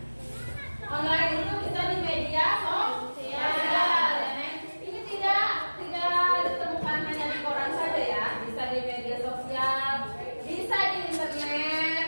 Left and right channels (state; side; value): inverted; both; correlation -1.00